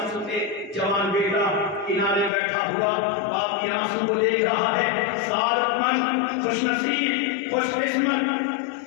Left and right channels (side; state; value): right; drops out; at 2.3 s